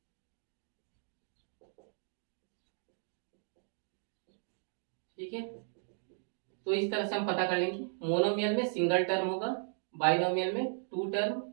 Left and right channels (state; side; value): silent; left; digital silence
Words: ठीक है, तो इस तरह से हम पता कर लेंगे। मोनोमियल में सिंगल टर्म होगा, बाइनोमियल में 2 टर्म,